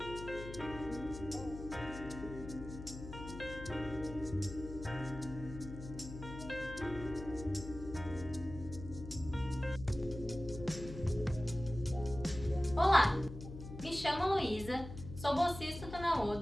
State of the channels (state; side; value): noise; left; hum, 10 dB below the sound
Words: me chamo Luísa, sou bolsista do